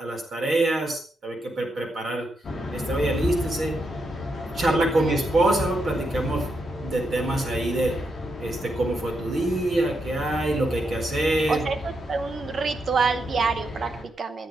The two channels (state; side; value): normal; both; correlation 0.82